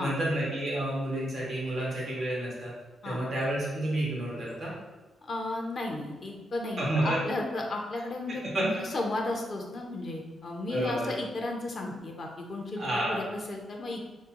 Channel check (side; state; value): both; normal; correlation 0.81